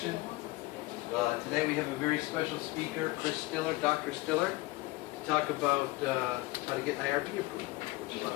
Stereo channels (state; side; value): quieter; right; 20.9 dB